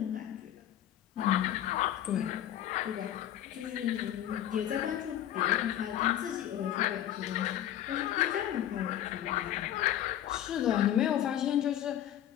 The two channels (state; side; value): quieter; right; 11.6 dB